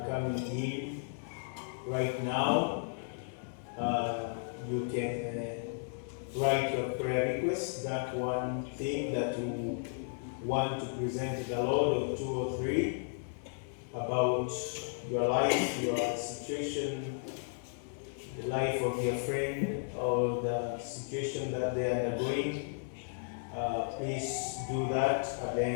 coming in right now. You can write your prayer request, that one thing that you want to present to the Lord, or 2 or 3, about your life, your situation, the life of your friend, or the situation that they are undergoing. Please do that. At the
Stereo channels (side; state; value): right; silent; 55 dB below the other